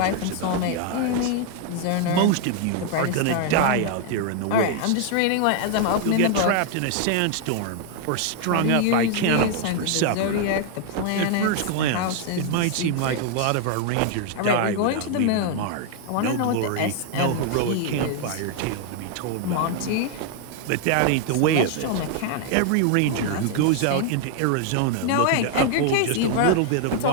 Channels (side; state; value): both; different; correlation 0.00